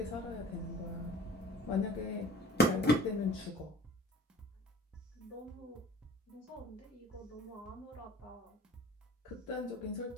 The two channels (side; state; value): both; normal; correlation 0.47